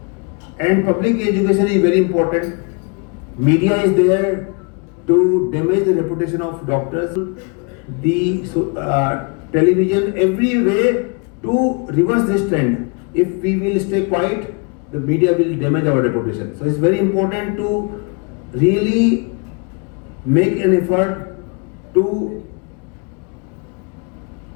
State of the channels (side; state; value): right; quieter; 33.7 dB